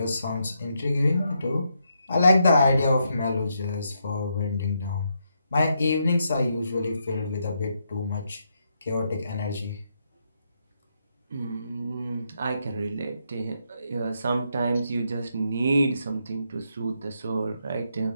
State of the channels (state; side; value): inverted; both; correlation -0.79